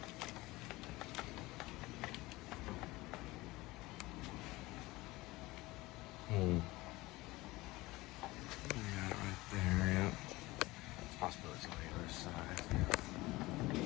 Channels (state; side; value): quieter; right; 20.3 dB